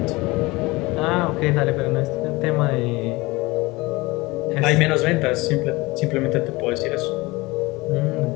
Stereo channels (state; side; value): quieter; right; 22.4 dB